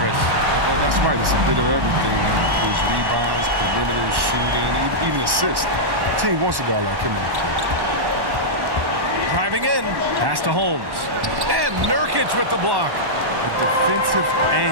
Well, that's right. It's a bit of everything. It includes rebounds, perimeter shooting, even assists. The team wants a guy like him on the court. Driving in, pass to Holmes. And Nurkic with the block. A defensive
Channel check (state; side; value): late; left; 1.1 ms